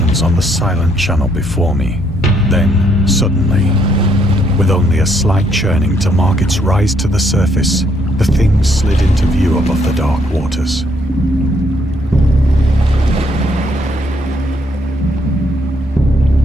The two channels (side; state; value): both; normal; correlation 0.71